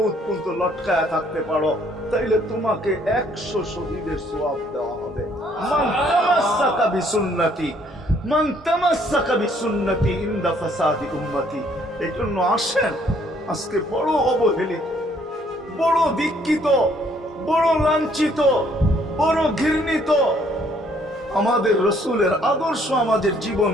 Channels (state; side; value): normal; both; correlation 0.64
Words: পর্যন্ত লটকায় থাকতে পারো, তাইলে তোমাকে 100 শহীদের সওয়াব দেওয়া হবে। মান তামাসসাকা বিসুন্নতি, মান তামাসসাকা বিসুন্নতি ইনদা ফাসাদি উম্মতি। এই জন্য আসেন, আজকে বড় অবহেলিত, বড় দীক্ষিত, বড় লাঞ্ছিত, বড় ঘৃণিত আমাদের রসুলের আদর্শ আমাদের